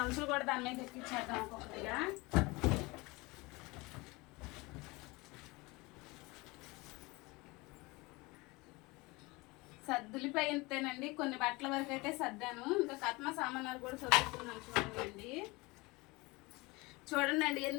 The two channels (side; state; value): right; quieter; 23.9 dB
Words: కూడా దాని మీద ఎక్కించేద్దాం ఒక్కొక్కటిగా. సర్దులిపోయితేనండి కొన్ని బట్టల వరకు అయితే సర్దాను. ఇంకా కట్మ సామానాలు కూడా చదువుతున్నాను చూడండి. చూడండి